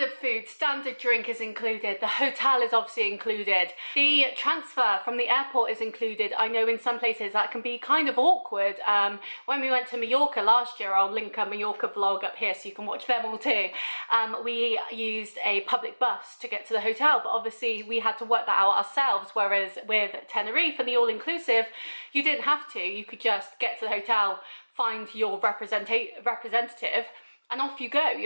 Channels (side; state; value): both; inverted; correlation -1.00